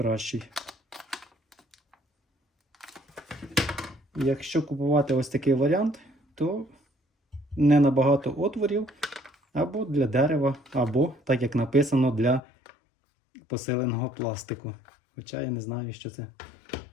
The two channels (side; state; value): right; drops out; at 12.4 s